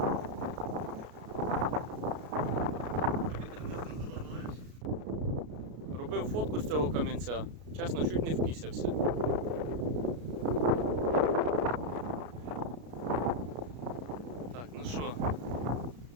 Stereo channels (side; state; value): left; late; 33 ms